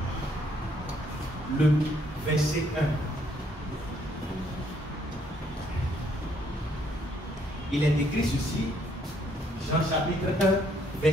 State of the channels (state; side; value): normal; both; correlation 0.68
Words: le verset 1. Il est écrit ceci, Jean chapitre 1,